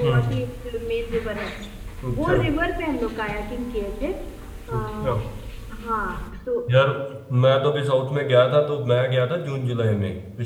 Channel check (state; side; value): identical; both; correlation 1.00